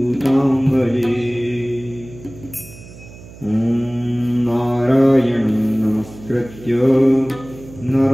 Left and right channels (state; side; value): noise; right; hum, 18 dB below the sound